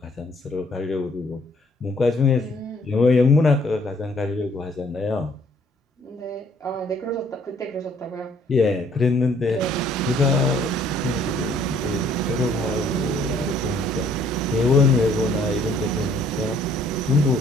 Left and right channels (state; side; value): normal; both; correlation 0.62